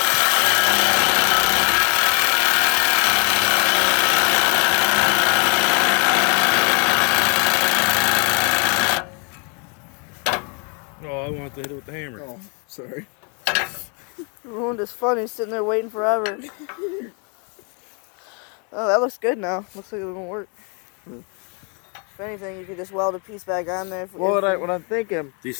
Oh, I wanted to hit it with the hammer. Oh, sorry. You ruined his fun. He's sitting there waiting forever. Oh, that looks good now. Looks like it won't work. If anything, you could just weld a piece back on there. Well, what I'm thinking, These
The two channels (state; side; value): quieter; right; 36.4 dB